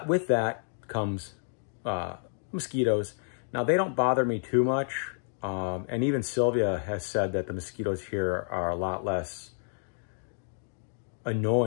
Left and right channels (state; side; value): silent; right; digital silence